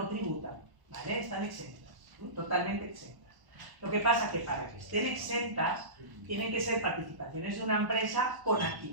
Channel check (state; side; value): late; left; 1.0 ms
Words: tributan, ¿vale? Están exentas, totalmente exentas. Lo que pasa es que para que estén exentas, tienen que ser participaciones de una empresa con